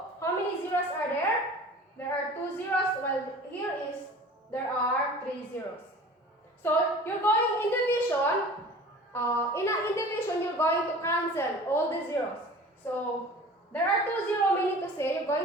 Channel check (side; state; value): both; normal; correlation 0.42